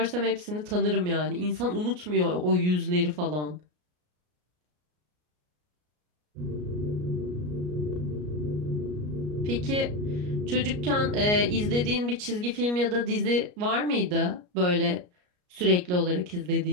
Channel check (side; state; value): left; late; 33 ms